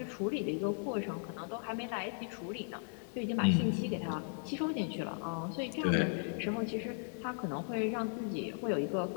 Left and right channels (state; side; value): silent; right; 53 dB below the other